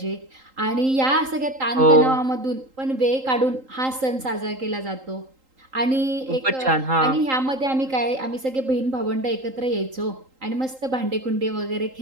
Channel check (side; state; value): left; late; 3.8 ms